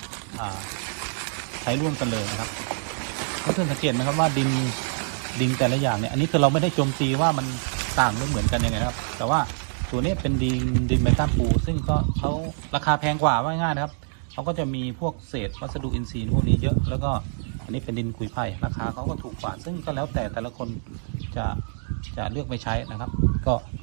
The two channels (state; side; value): silent; left; digital silence